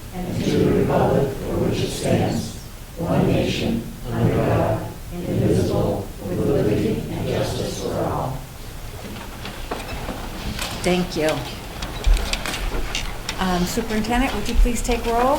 and to the republic for which it stands, one nation, under God, indivisible, with liberty and justice for all. Thank you. Superintendent, would you please take roll?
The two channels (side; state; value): both; identical; correlation 1.00